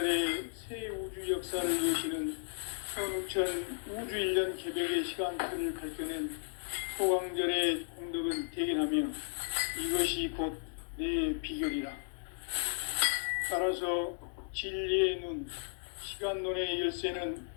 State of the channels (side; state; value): right; silent; digital silence